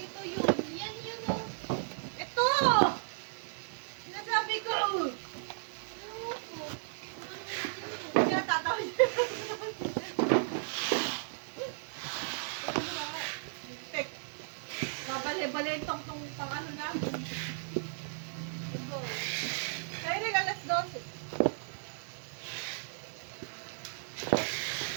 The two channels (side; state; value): left; silent; 55 dB below the other